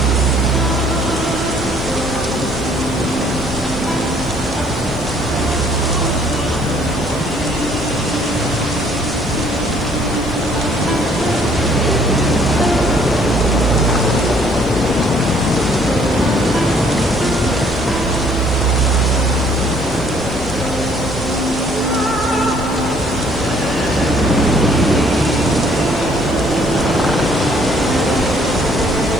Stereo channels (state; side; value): noise; right; hiss, 27 dB below the sound